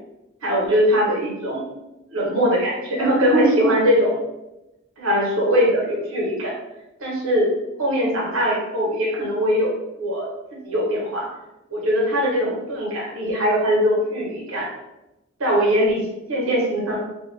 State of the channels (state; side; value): normal; both; correlation 0.19